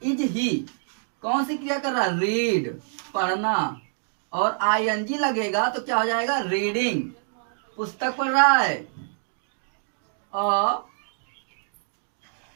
इज ही कौन सी क्रिया कर रहा है, रीड, पढ़ना, और आईएनजी लगेगा तो क्या हो जाएगा, रीडिंग, पुस्तक पढ़ रहा है। अ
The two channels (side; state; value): left; silent; digital silence